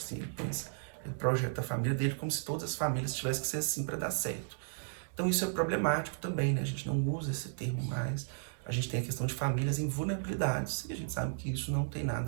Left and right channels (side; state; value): left; silent; digital silence